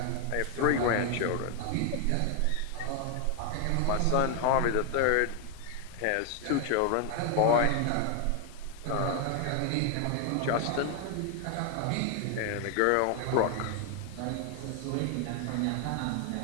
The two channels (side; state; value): both; different; correlation 0.00